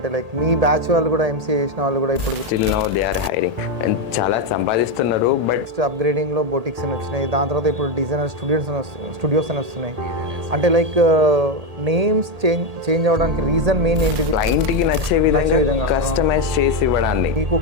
మీ బ్యాచ్ వాళ్ళు కూడా ఎంసీఏ చేసిన వాళ్ళు కూడా ఇప్పుడు still now they are hiring and చాలా సంపాదిస్తున్నారు. బట్ నెక్స్ట్ అప్‌గ్రేడింగ్‌లో బొటిక్స్ అని వచ్చినాయి. దాని తర్వాత ఇప్పుడు డిజైనర్ స్టూడియోస్ అని వస్తున్నాయి. అంటే నేమ్స్ చేంజ్ అవ్వడానికి రీజన్ మెయిన్ ఏంటిది? క్లయింట్కి నచ్చే విధంగా, విధంగా కస్టమైజ్ చేసి ఇవ్వడాన్ని. మీకు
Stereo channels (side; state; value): left; late; 1.8 ms